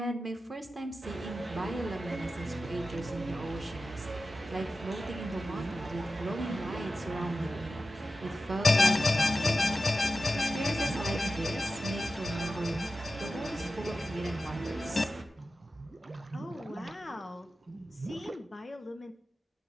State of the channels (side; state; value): both; normal; correlation 0.93